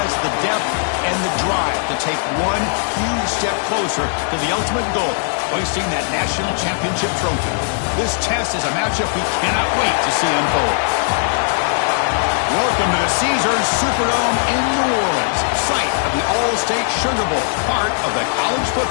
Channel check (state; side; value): silent; right; digital silence